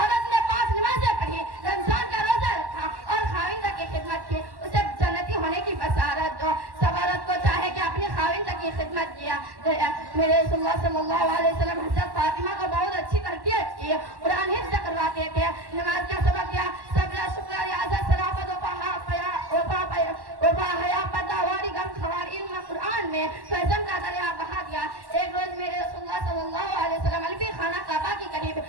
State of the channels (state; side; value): late; left; 1.1 ms